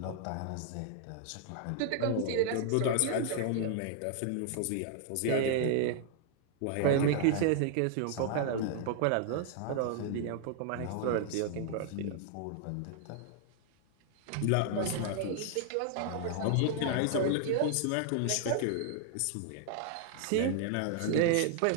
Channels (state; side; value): different; both; correlation -0.01